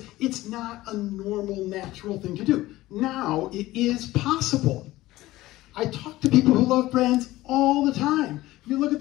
it's not a normal, natural thing to do. Now, it is possible. I talk to people who love brands all the time. You look at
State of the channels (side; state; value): right; quieter; 17.2 dB